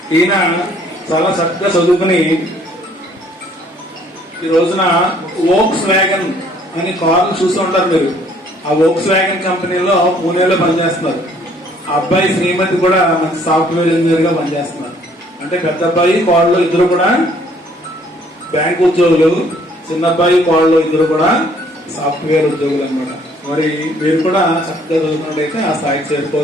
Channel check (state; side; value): normal; both; correlation 0.61